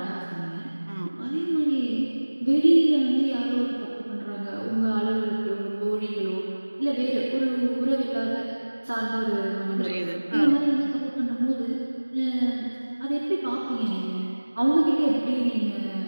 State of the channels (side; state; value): both; inverted; correlation -1.00